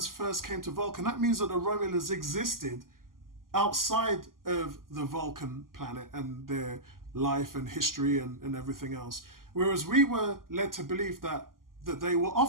first came to Vulcan, that means that the Romulans existed outside of the Vulcan planet and their life and history and everything else. Whereas we were led to believe that they were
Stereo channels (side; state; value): left; late; 0.91 ms